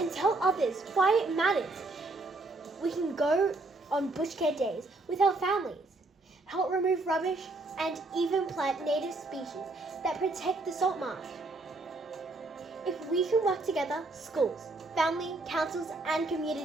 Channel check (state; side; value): quieter; left; 3.1 dB